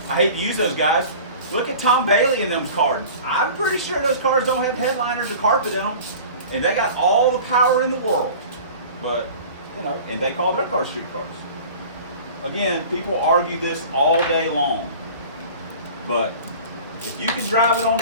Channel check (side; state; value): both; inverted; correlation -0.41